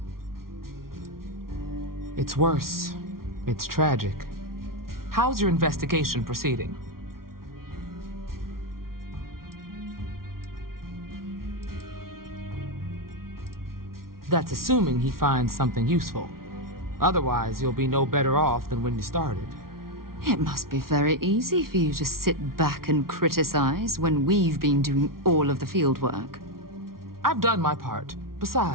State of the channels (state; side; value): late; left; 0.93 ms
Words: It's worse. It's tragic. How's your investigation proceeding? That's assuming he finds something useful. Otherwise, you'll be no better off than when you started. It must be very easy for you to sit back and criticize when we've been doing all of the field work. I've done my part.